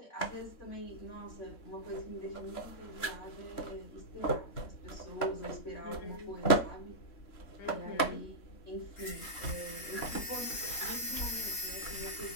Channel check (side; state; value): right; late; 3.6 ms